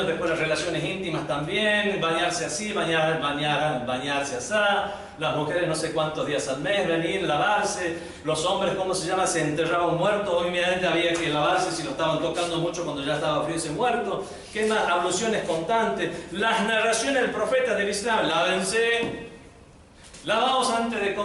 después las relaciones íntimas también, bañarse así, bañarse así, las mujeres no sé cuántos días al mes, venir, lavarse, los hombres, ¿cómo se llama? Se enterraba un muerto, obviamente había que lavarse si lo estaban tocando mucho cuando ya estaba frío ese muerto. ¿Qué más? Abluciones constantes, las narraciones del profeta del Islam, lávense, lavaos antes de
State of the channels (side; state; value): both; identical; correlation 1.00